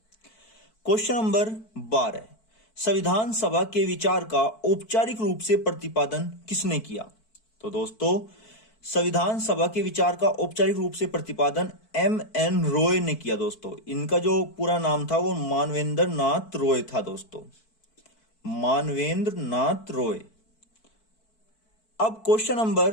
क्वेश्चन नंबर 12, संविधान सभा के विचार का औपचारिक रूप से प्रतिपादन किसने किया। तो दोस्तों, संविधान सभा के विचार का औपचारिक रूप से प्रतिपादन M.N. रॉय ने किया दोस्तों। इनका जो पूरा नाम था वो मानवेंद्र नाथ रॉय था दोस्तों, मानवेंद्र नाथ रॉय। अब क्वेश्चन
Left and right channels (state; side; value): late; right; 4.5 ms